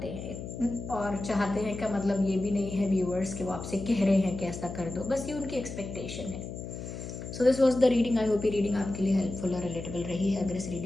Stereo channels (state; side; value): noise; left; hum, 8 dB below the sound